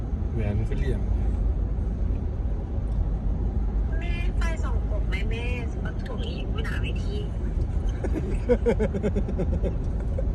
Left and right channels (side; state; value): both; identical; correlation 1.00